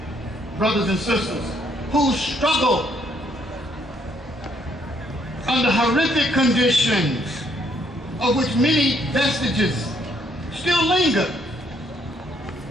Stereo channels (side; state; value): both; normal; correlation 0.70